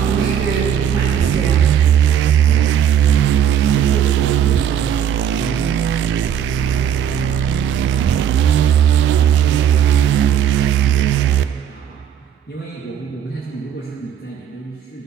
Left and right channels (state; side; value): quieter; left; 9.2 dB